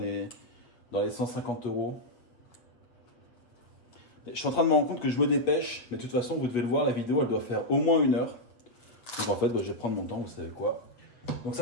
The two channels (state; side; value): late; right; 7.8 ms